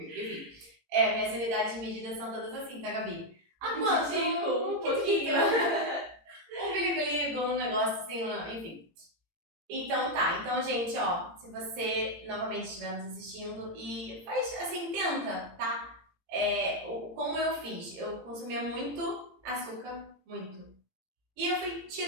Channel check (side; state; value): left; late; 17 ms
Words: Enfim. Minhas unidades de medida são todas assim, tá, Gabi? Quanto? Um pouquinho. Um biligo-ligo, um negócio assim, enfim. Então tá, então gente, ó, se você novamente estiver nos assistindo e faz assim, tenta, tá? Como eu fiz, eu consumia muito açúcar, muito. E eu fui